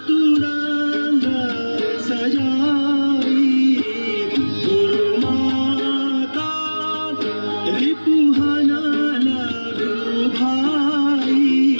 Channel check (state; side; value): inverted; both; correlation -1.00